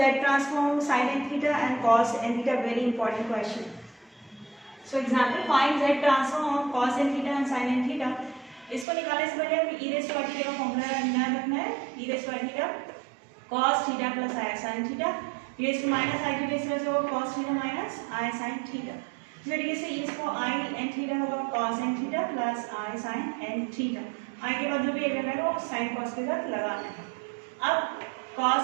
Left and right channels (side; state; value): left; drops out; at 8.8 s